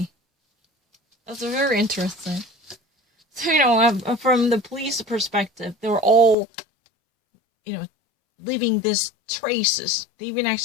That's very interesting. So, from the police perspective, they were all, leaving these traces. They've been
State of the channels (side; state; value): right; drops out; at 6.4 s